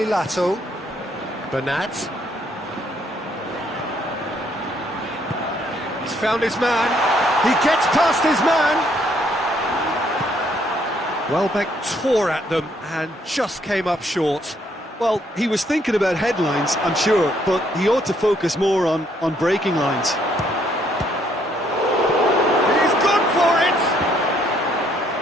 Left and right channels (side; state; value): both; normal; correlation 0.68